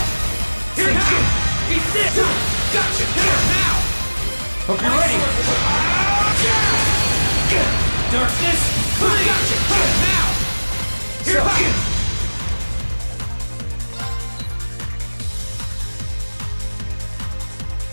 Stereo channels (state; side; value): inverted; both; correlation -1.00